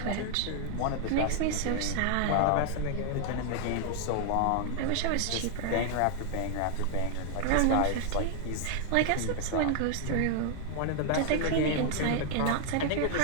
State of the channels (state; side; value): different; both; correlation 0.00